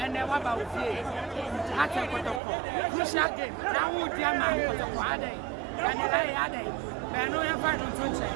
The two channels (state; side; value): drops out; left; at 2.4 s